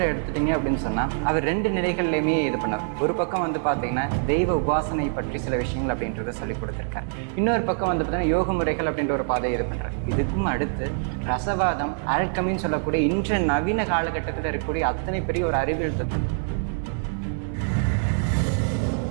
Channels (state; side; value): silent; left; digital silence